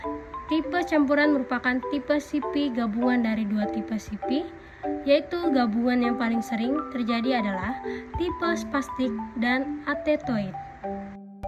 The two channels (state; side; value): identical; both; correlation 1.00